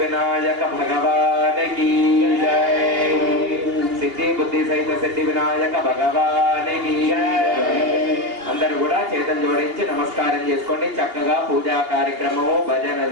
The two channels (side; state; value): left; late; 2.8 ms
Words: భగవానికి జై. సిద్ధి బుద్ధి సహిత సిద్ధి వినాయక భగవానికి జై. అందరూ కూడా చేతులు జోడించి నమస్కారం చేసుకోండి. చక్కగా పూజా కార్యక్రమము,